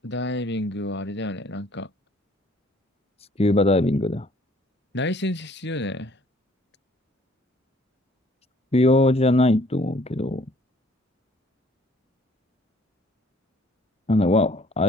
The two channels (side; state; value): both; normal; correlation 0.59